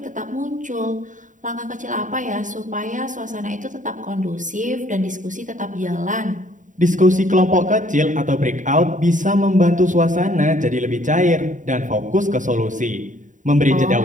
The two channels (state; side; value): late; left; 0.37 ms